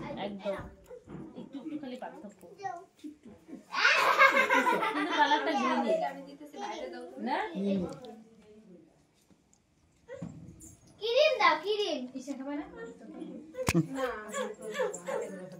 একদম একটু খালি পার্থক্য কিন্তু কালারটা গ্রিন আমি দিতেছি বাইরে দাও না কিরিম দাও কিরিম ইসে খাবে না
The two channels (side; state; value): both; identical; correlation 1.00